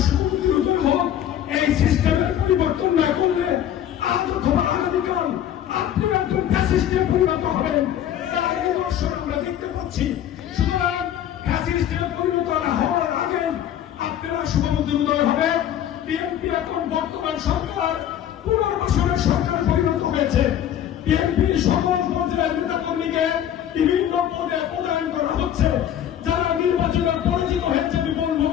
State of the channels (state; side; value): quieter; right; 10.6 dB